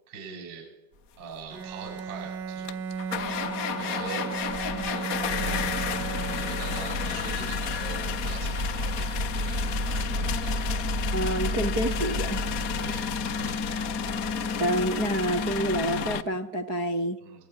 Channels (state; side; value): late; left; 4.3 ms